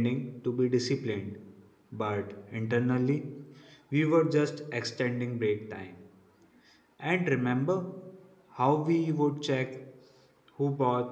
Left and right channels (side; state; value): both; identical; correlation 1.00